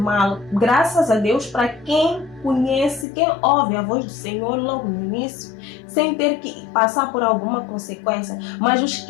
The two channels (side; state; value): right; drops out; at 3.1 s